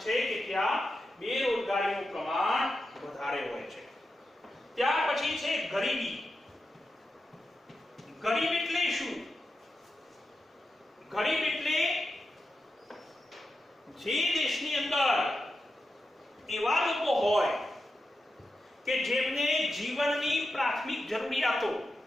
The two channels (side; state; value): both; normal; correlation 0.89